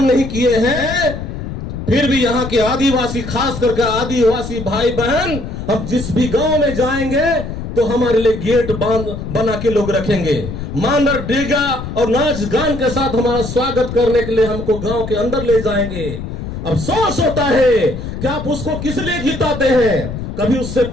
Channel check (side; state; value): left; noise; rumble, 7 dB below the sound